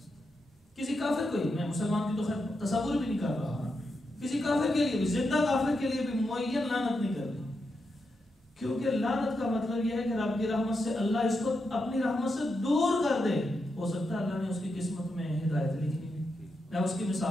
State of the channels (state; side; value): normal; both; correlation 0.85